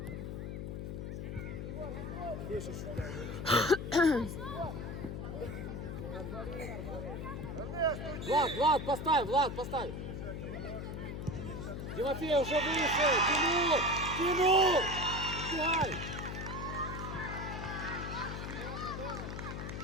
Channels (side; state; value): left; noise; hum, 6 dB below the sound